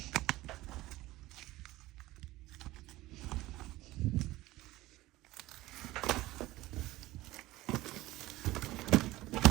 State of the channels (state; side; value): quieter; left; 17.8 dB